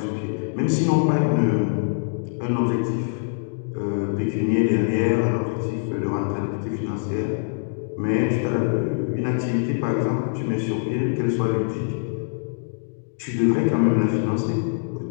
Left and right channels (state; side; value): silent; right; digital silence